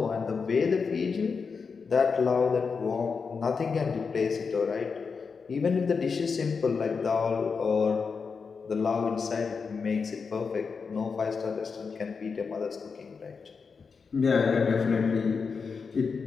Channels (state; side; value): quieter; right; 5.3 dB